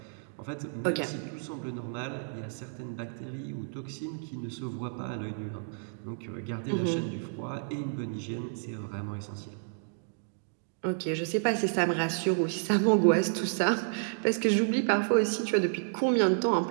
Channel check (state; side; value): silent; left; digital silence